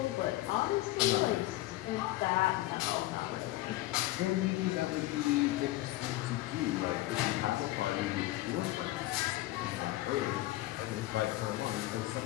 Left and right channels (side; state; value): right; quieter; 17.4 dB